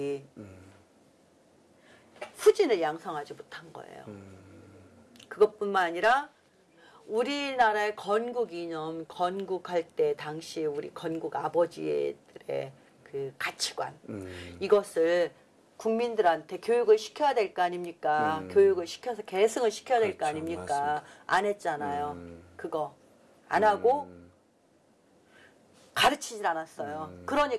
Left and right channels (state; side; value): identical; both; correlation 1.00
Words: 후진을 양성하지 못한 거예요. 그것뿐만 아니라 우리나라의 건국 이념, 건국할 때 당시 우리 건국 아버지들의 그 가치관 이것을 국민들한테 교육을 시켜야 될 거 아닙니까? 교육을 시켜서 계승을 시켜야 될 거 아닙니까? 맞습니다. 안 했잖아요. 그거 안 하고 가르치질 않았어요.